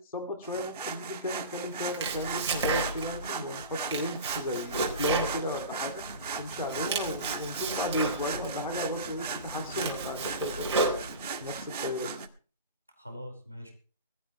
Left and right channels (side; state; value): both; inverted; correlation -0.30